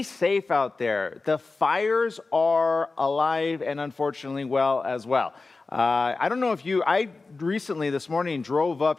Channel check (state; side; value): quieter; right; 3.8 dB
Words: safe out there. The fires are alive and unfortunately well as well. I don't know if I recently this morning drove